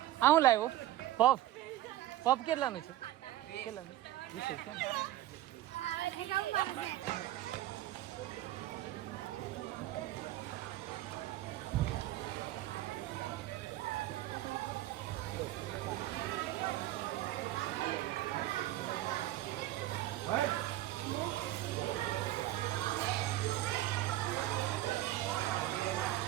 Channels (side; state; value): left; quieter; 14.8 dB